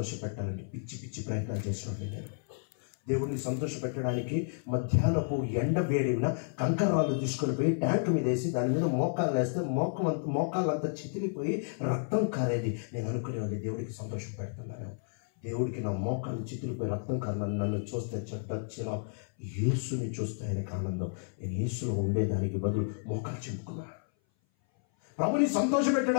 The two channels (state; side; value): silent; right; 57 dB below the other